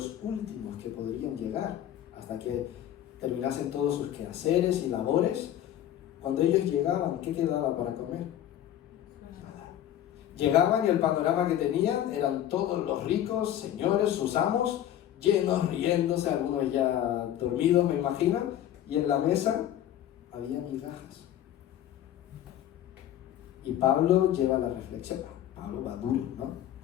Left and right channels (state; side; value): quieter; right; 11.6 dB